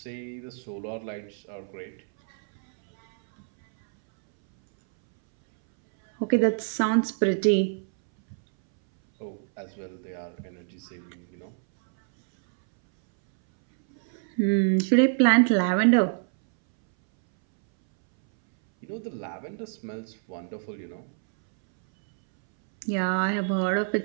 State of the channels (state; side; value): silent; left; 61 dB below the other